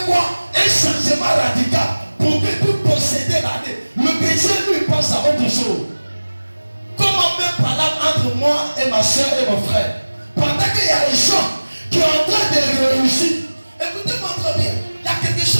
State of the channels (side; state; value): both; inverted; correlation -1.00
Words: quoi? Un changement radical pour que tu posséder l'année. Le chrétien lui pense à autre chose. Comment même parler entre moi et ma soeur et mon frère? Pendant qu'il y a des gens qui sont en train de réussir. Écoutez-moi très bien. Il y a quelque